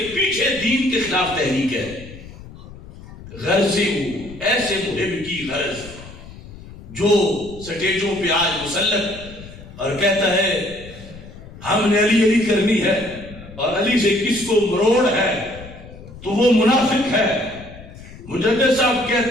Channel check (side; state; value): left; noise; rumble, 17 dB below the sound